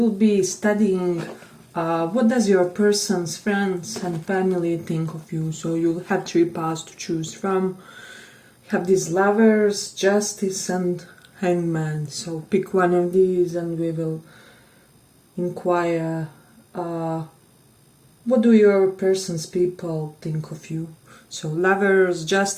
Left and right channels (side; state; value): both; identical; correlation 1.00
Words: be studying what does your person's friends and family think of you. So you'll have three paths to choose from. You have these lovers, justice and hangman. So pick one of these and we will inquire what do your person's people think of you. So lovers,